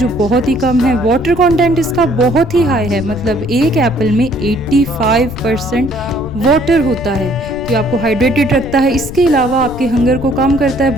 बहुत ही कम है। वाटर कंटेंट इसका बहुत ही हाई है, मतलब एक एप्पल में 85% वाटर होता है, तो ये आपको हाइड्रेटेड रखता है। इसके अलावा आपके हंगर को कम करता है,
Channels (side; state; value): left; noise; rumble, 11 dB below the sound